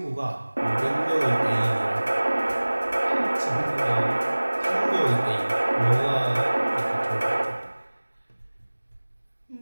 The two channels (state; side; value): inverted; both; correlation -1.00